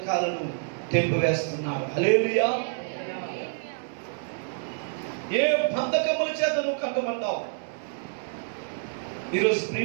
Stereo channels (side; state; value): left; silent; digital silence